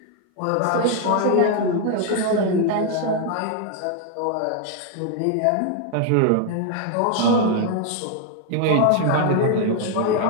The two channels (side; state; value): both; different; correlation 0.00